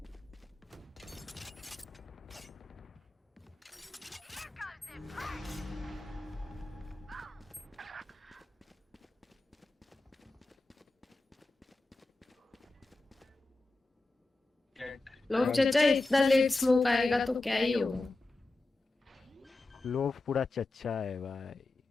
लोग चाचा इतना late smoke आएगा तो क्या ही होगा। लोग पूरा चच्चा है भाई,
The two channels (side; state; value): right; quieter; 3.0 dB